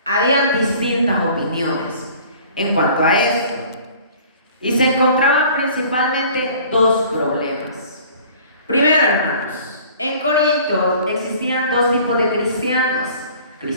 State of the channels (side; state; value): both; inverted; correlation -0.49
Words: habían distintas opiniones en cuanto a esto, y se encontraban principalmente dos problemas. Primero, hermanos, en Corinto existían dos tipos de cristianos: